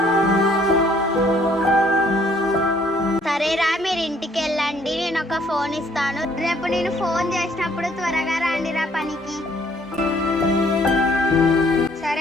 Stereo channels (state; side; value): normal; both; correlation 0.63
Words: మీరు ఇంటికి వెళ్ళండి, నేను ఒక ఫోన్ ఇస్తాను. రేపు నేను ఫోన్ చేసినప్పుడు త్వరగా రండిరా పనికి.